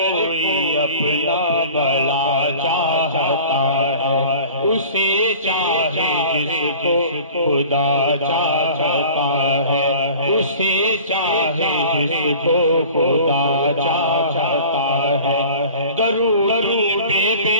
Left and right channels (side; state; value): both; inverted; correlation -0.43